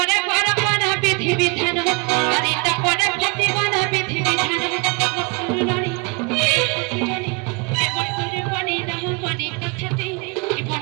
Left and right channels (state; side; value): quieter; left; 29.7 dB